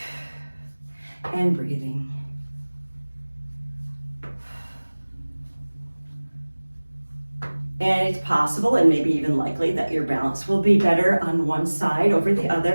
And breathing. And it's possible and maybe even likely that your balance will be better on one side over the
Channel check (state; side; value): inverted; both; correlation -1.00